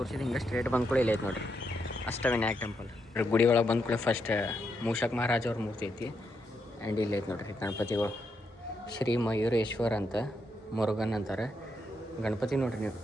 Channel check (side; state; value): both; normal; correlation 0.81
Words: ಹಿಂಗೆ ಸ್ಟ್ರೇಟ್ ಬಂದ್ಕೊಳ್ಳಿ ಇಲ್ಲ ಐತೆ ನೋಡ್ರಿ ಅಷ್ಟವಿನಾಯಕ ಟೆಂಪಲ್. ಗುಡಿ ಒಳಗೆ ಬಂದ್ಕೊಳ್ಳಿ ಫಸ್ಟ್ ಮೂಷಕ್ ಮಹಾರಾಜ್ ಅವ್ರ ಮೂರ್ತಿ ಐತಿ. ಆ್ಯಂಡ್ ಇಲ್ಲಿ ಐತೆ ನೋಡ್ರಿ ಗಣಪತಿಗಳು. ಶ್ರೀ ಮಯೂರೇಶ್ವರ್ ಅಂತ, ಮುರುಗನ್ ಅಂತಾರೆ ಗಣಪತಿ. ನೋಡ್ರಿ ನೀವು